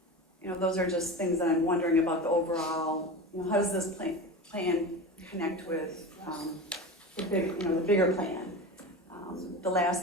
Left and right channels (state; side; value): normal; both; correlation 0.28